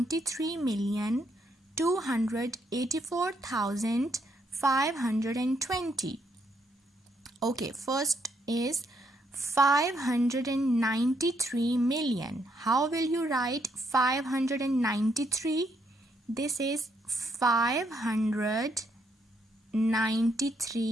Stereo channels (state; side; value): normal; both; correlation 0.74